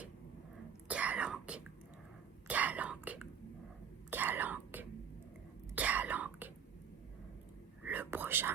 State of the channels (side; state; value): left; quieter; 7.6 dB